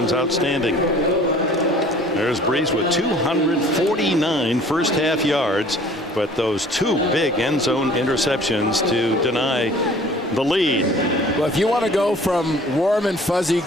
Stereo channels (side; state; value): both; normal; correlation 0.51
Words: outstanding. There's Brees with 249 first half yards, but those 2 big end zone interceptions to deny the lead. Well, if you want to go from warm and fuzzy